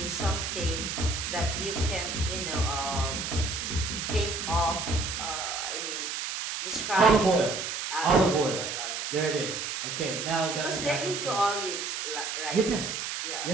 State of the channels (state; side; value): noise; right; hiss, 4 dB below the sound